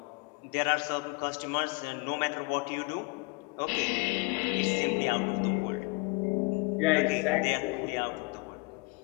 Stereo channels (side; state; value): right; quieter; 28.2 dB